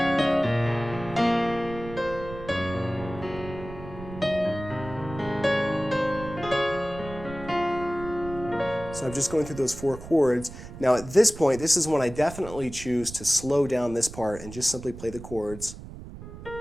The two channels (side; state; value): right; noise; rumble, 13 dB below the sound